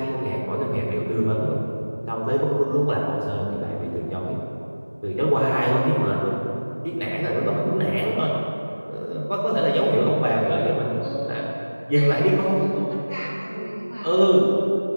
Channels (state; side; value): inverted; both; correlation -1.00